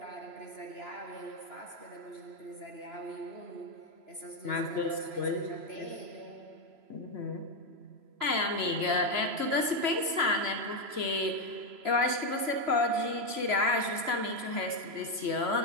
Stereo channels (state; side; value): late; left; 3.0 ms